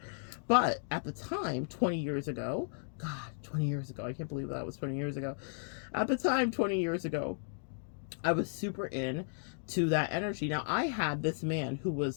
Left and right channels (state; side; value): silent; right; digital silence